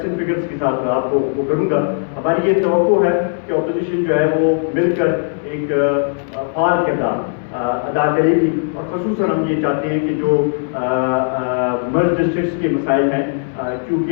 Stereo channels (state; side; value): silent; right; digital silence